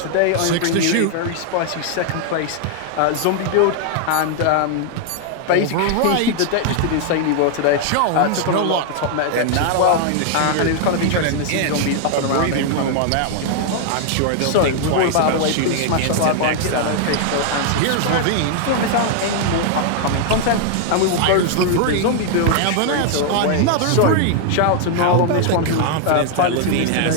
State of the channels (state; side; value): different; both; correlation 0.00